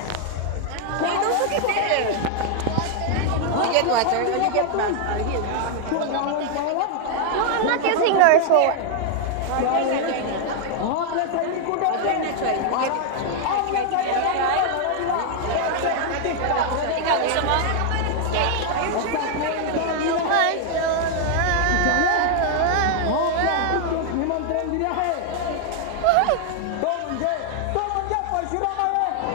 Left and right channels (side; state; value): both; different; correlation 0.00